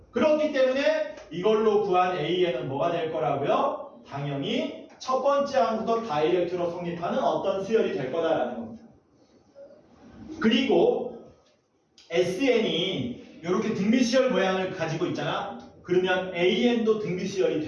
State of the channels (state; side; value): identical; both; correlation 1.00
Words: 그렇기 때문에 이걸로 구한 AN은 뭐가 될 거라고요? 당연히 첫 번째 항부터 다이렉트로 성립하는 어떤 수열이 될 거다라는 겁니다. 그리고 SN이 이렇게 등비수열 모양을 가지고 있잖아. 그러면 AN도 등비수열이